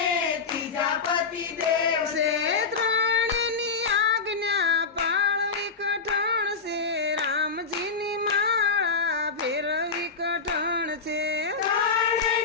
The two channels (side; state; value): right; quieter; 4.8 dB